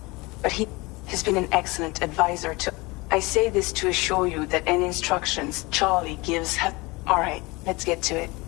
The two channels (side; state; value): right; quieter; 24.2 dB